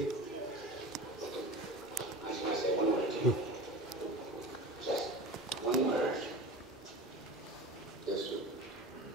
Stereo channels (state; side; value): normal; both; correlation 0.33